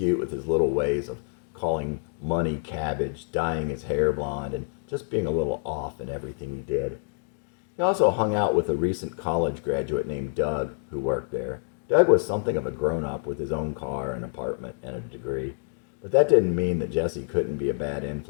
with his little ways of calling money cabbage, dyeing his hair blonde, and just being a little off in everything he did. He also hung out with a recent college graduate named Doug who worked there. Doug was something of a grown-up with his own car, an apartment, and a degree. But that didn't mean that Jessie couldn't be a bad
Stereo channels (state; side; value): silent; right; digital silence